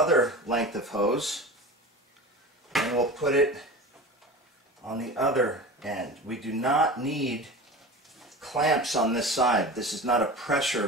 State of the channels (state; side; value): normal; both; correlation 0.33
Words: length of hose and we'll put it on the other end. We do not need clamps on this side. This is not a